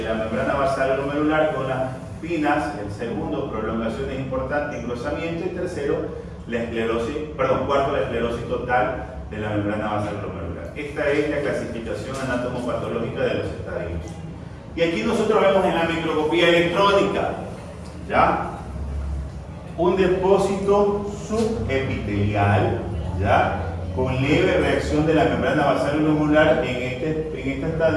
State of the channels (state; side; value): identical; both; correlation 1.00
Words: membrana basal glomerular con las espinas. El segundo, prolongaciones importantes, engrosamiento. Y tercero, cuarto, la esclerosis total de la membrana basal glomerular. Esta es la clasificación anatomopatológica de los estadios. Y aquí nosotros vemos en la microscopía electrónica, ¿ya? un depósito subepitelial, ¿ya? Con leve reacción de la membrana basal glomerular. En este